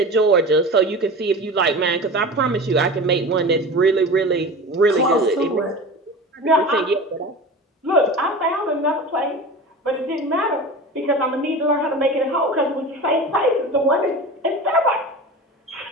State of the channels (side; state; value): both; normal; correlation 0.32